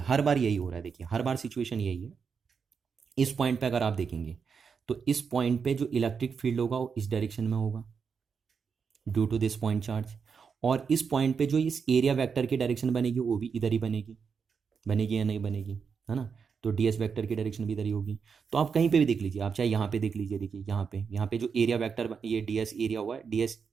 हर बार यही हो रहा है, देखिए हर बार सिचुएशन यही है। इस पॉइंट पे अगर आप देखेंगे तो इस पॉइंट पे जो इलेक्ट्रिक फील्ड होगा वो इस डायरेक्शन में होगा due to this point charge, और इस पॉइंट पे जो इस एरिया वेक्टर की डायरेक्शन बनेगी वो भी इधर ही बनेगी, बनेगी या नहीं बनेगी, है ना। तो डीएस वेक्टर की डायरेक्शन भी इधर ही होगी। तो आप कहीं पे भी देख लीजिए, आप चाहे यहाँ पे देख लीजिए, देखिए यहाँ पे जो एरिया वेक्टर, ये डीएस एरिया हुआ है, डीएस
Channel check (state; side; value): quieter; left; 6.0 dB